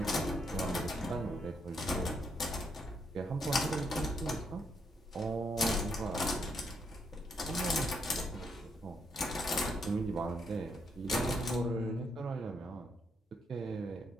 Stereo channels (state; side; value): normal; both; correlation 0.75